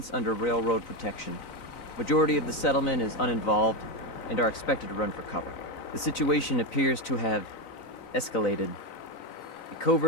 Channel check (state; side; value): late; right; 3.9 ms